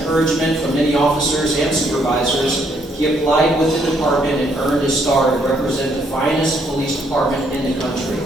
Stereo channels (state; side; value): normal; both; correlation 0.71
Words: from many officers and supervisors, he applied with the department and earned his star to represent the finest police department in the country.